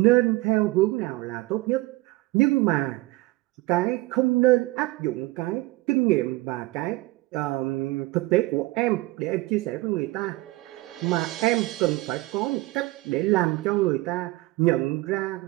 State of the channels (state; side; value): quieter; left; 20.4 dB